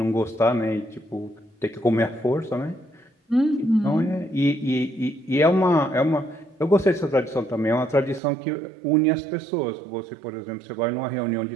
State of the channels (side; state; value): left; drops out; at 8.2 s